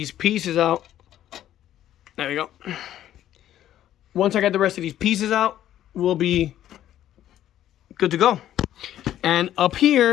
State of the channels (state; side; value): quieter; right; 12.0 dB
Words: pieces out, there we go. Once I get the rest of these pieces out, we'll be good to go. And up